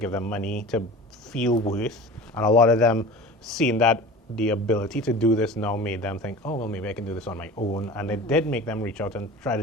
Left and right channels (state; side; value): normal; both; correlation 0.37